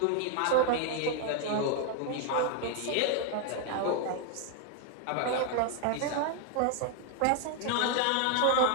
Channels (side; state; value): both; different; correlation 0.01